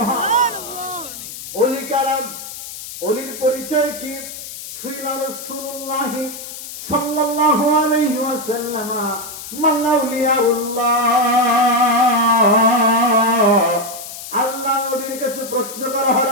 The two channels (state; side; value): noise; left; hiss, 11 dB below the sound